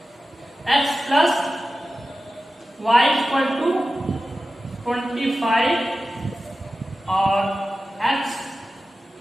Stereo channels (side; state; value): both; normal; correlation 0.94